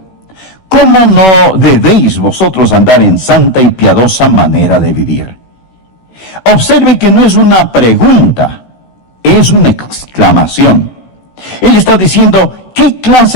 ¿cómo no debéis vosotros andar en santa y piadosa manera de vivir? Observe que no es una pregunta, es una exclamación. Él está diciendo, ¿qué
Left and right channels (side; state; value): right; late; 16 ms